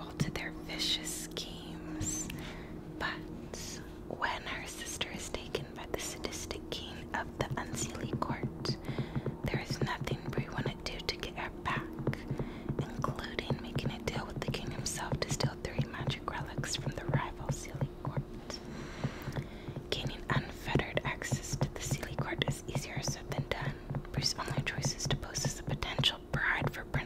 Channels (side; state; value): both; identical; correlation 1.00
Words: to their vicious schemes. But when her sister is taken by the sadistic king of the Unseelie Court, there is nothing Bree wouldn't do to get her back, including making a deal with the king himself to steal 3 magic relics from the rival Seelie Court. Gaining unfettered access to the Seelie Court is easier said than done. Bree's only choice is to pose as a potential bride for